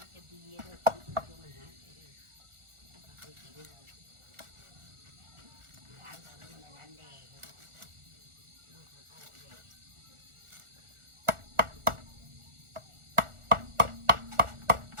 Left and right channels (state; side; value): late; left; 1.4 ms